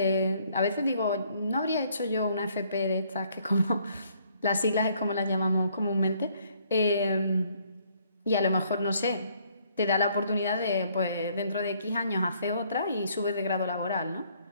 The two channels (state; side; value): inverted; both; correlation -0.65